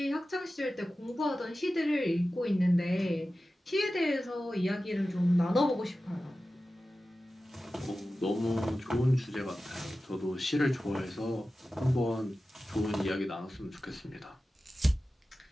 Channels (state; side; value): normal; both; correlation 0.94